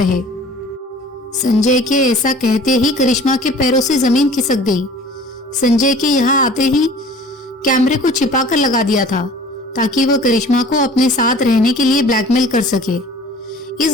संजय के ऐसा कहते ही करिश्मा के पैरों से जमीन खिसक गई। संजय के यहाँ आते ही कैमरे को छिपाकर लगा दिया था ताकि वह करिश्मा को अपने साथ रहने के लिए ब्लैकमेल कर सके।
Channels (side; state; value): both; normal; correlation 0.47